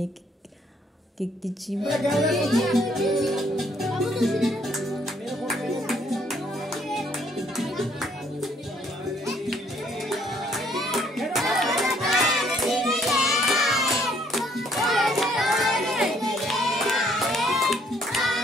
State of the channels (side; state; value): both; normal; correlation 0.66